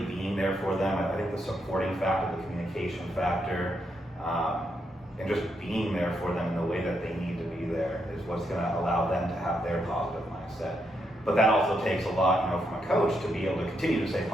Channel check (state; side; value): normal; both; correlation 0.80